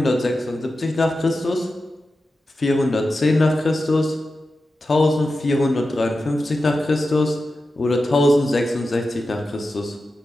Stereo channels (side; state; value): both; normal; correlation 0.92